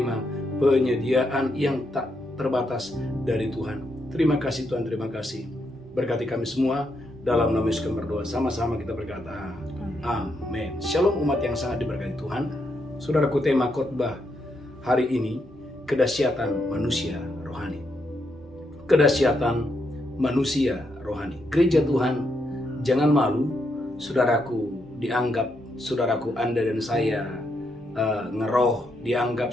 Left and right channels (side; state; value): both; normal; correlation 0.80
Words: penyediaan yang tak terbatas dari Tuhan. Terima kasih Tuhan, terima kasih. Berkati kami semua, dalam nama Yesus kami berdoa. Sama-sama kita berkata, amin. Shalom umat yang sangat diberkati Tuhan. Saudaraku, tema khotbah hari ini, kedahsyatan manusia rohani. Kedahsyatan manusia rohani. Gereja Tuhan, jangan malu, saudaraku, dianggap saudaraku Anda dan saya ngeroh, dianggap